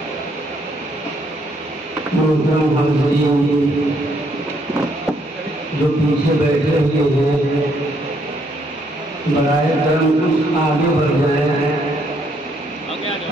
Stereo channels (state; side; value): normal; both; correlation 0.71